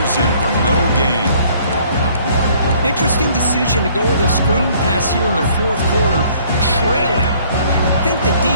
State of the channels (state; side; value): inverted; both; correlation -0.59